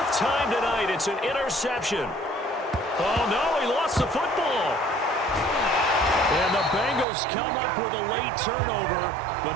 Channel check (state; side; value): drops out; left; at 7.1 s